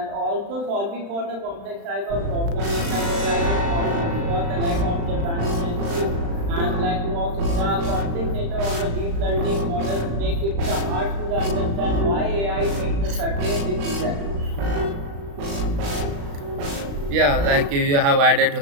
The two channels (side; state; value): left; late; 35 ms